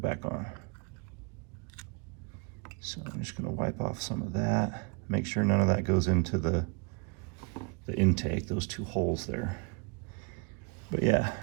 back on. So I'm just gonna wipe off some of that. Make sure none of that goes into the intake, those two holes there. But yeah,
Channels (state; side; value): quieter; left; 33.7 dB